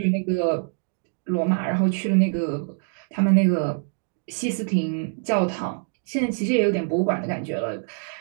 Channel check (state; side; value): silent; left; 56 dB below the other